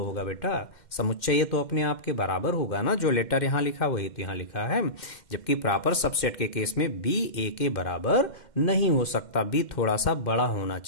होगा बेटा। समुच्चय ए तो अपने आप के बराबर होगा ना, जो लेटर यहां लिखा वही तो यहां लिखा है। जबकि प्रॉपर सबसेट के केस में बी ए के बराबर नहीं हो सकता, बी थोड़ा सा बड़ा होना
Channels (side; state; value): right; late; 2.1 ms